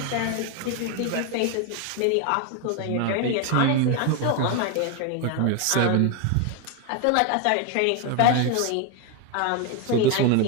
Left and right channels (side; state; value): both; different; correlation 0.01